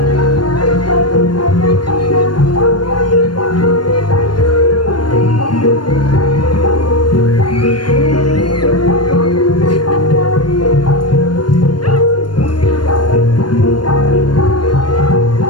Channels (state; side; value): late; right; 0.71 ms